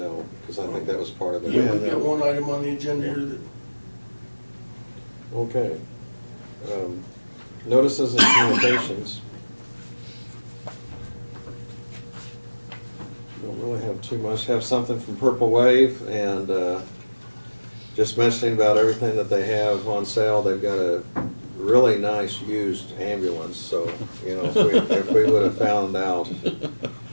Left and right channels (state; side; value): inverted; both; correlation -1.00